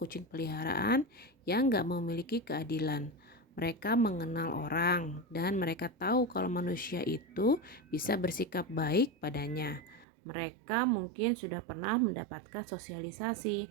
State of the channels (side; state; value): left; drops out; at 10.1 s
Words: peliharaan yang gak memiliki keadilan. Mereka mengenal orang dan mereka tahu kalau manusia itu bisa bersikap baik padanya. Mereka mungkin sudah pernah mendapatkan sosialisasi.